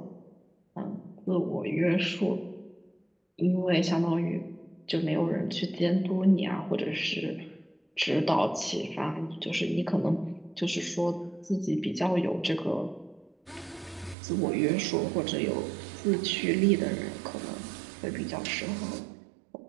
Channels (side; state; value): left; drops out; at 14.2 s